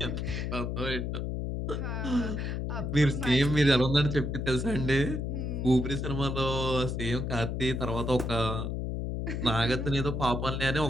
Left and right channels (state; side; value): noise; left; hum, 2 dB below the sound